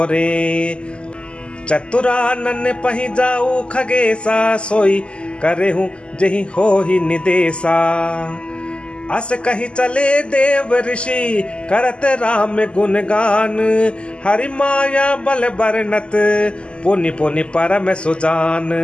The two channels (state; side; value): late; right; 0.052 ms